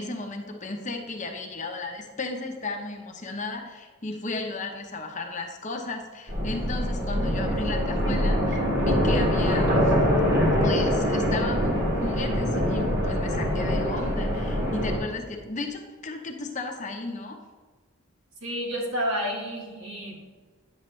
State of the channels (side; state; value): both; normal; correlation 0.49